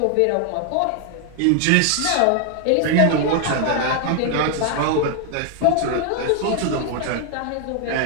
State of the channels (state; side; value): different; both; correlation 0.00